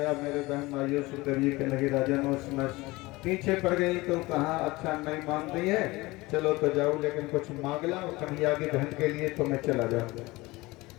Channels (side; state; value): right; quieter; 21.3 dB